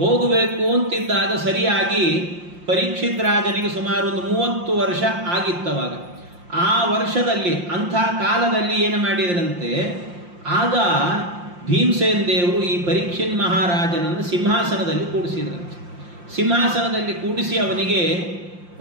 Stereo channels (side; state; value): left; late; 5.7 ms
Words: ಹೋಗಬೇಕು ಅಂತಿದ್ದಾಗ ಸರಿಯಾಗಿ ಪರೀಕ್ಷಿತ್ ರಾಜನಿಗೆ ಸುಮಾರು ಒಂದು 30 ವರ್ಷ ಆಗಿತ್ತವಾಗ. ಆ ವರ್ಷದಲ್ಲಿ ಅಂಥ ಕಾಲದಲ್ಲಿ ಏನು ಮಾಡಿದ್ರಂತೆ, ಆಗ ಭೀಮಸೇನ್ ದೇವರು ಈ ಪರೀಕ್ಷಿತ್ ಮಹಾರಾಜನನ್ನು ಸಿಂಹಾಸನದಲ್ಲಿ ಕೂಡಿಸಿದ್ರಂತೆ. ಸಿಂಹಾಸನದಲ್ಲಿ ಕೂಡಿಸಿ ಅವನಿಗೆ